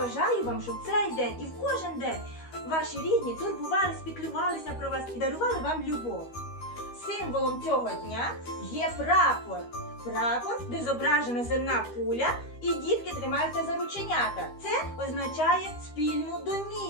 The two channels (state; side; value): late; right; 13 ms